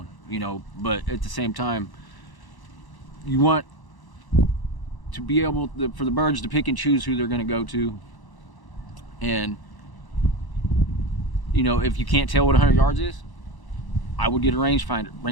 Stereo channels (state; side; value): late; right; 1.0 ms